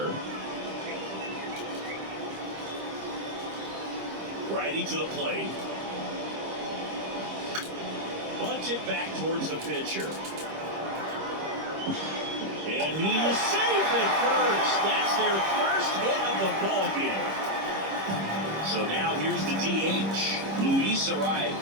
Righty to the plate. Bunted back towards the pitcher. And he is safe at first. That's their first hit of the ball game. So now here's the DH, Luis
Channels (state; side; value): late; left; 26 ms